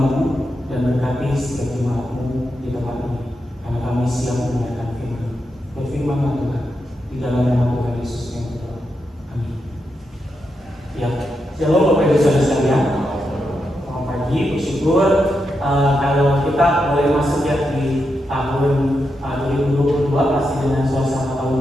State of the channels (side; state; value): both; normal; correlation 0.85